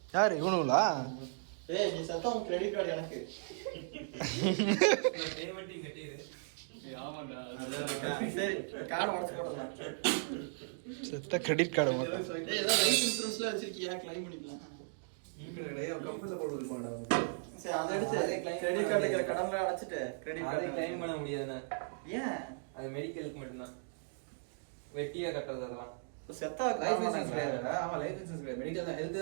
யாரு இவனுங்களா? ஏய் நீ சத்தம் கிரெடிட் கார்டு எனக்கு. நான் பேமெண்ட்டையும் கட்டிடு. ஆமாடா. சரி கார்டு உடைச்சு போடலாம். செத்த கிரெடிட் கார்டு மட்டும். ஏய் ஏதோ லைஃப் இன்சூரன்ஸ்ல வச்சிருக்கியா? கிளைம் பண்ணிக்கலாம். கம்பெனில போட்டு இருப்பான்டா. சரி அதை எடுத்து கிரெடிட் கார்டுல இருக்கிற கடன்ல அடைச்சிட்டு கிரெடிட் அதை கார்டு கிளைம் பண்ண முடியாதுண்ணா. ஏன்? அது மெடிக்கலுக்கு மட்டும்தான். வெட்டியா கட்டுறது அதெல்லாம். செத்தா லைஃப் இன்சூரன்ஸ் கிடையாதுடா. ஆமா லைஃப் இன்சூரன்ஸ் கிடையாது. மெடிக்கல் தான் ஹெல்த்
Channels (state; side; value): silent; left; digital silence